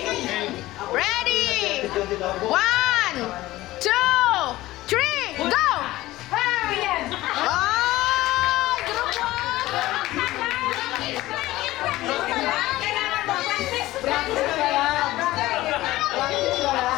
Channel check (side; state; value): right; quieter; 17.2 dB